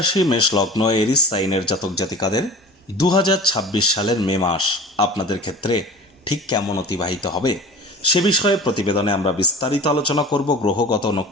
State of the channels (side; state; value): both; normal; correlation 0.38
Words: মেষ লগ্ন এরিস সাইনের জাতক জাতিকাদের 2026 সালের মে মাস আপনাদের ক্ষেত্রে ঠিক কেমন অতিবাহিত হবে সে বিষয়ে প্রতিবেদনে আমরা বিস্তারিত আলোচনা করব। গ্রহগত